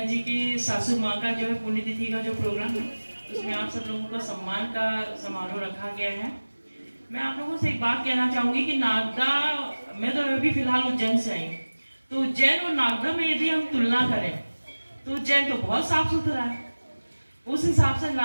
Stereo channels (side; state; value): both; inverted; correlation -1.00